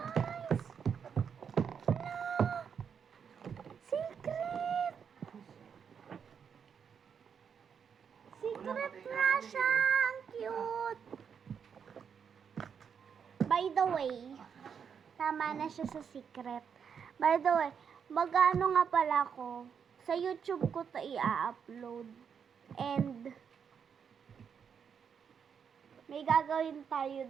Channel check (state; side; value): quieter; left; 7.1 dB